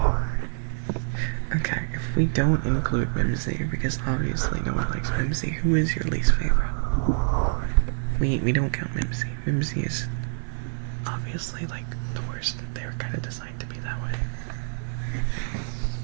Okay, if we don't include Mimsy, because obviously no one likes Mimsy, who is your least favorite? We don't count Mimsy. Mimsy is obviously, like, the worst. They were kind of designed to be that way.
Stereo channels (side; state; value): left; silent; 56 dB below the other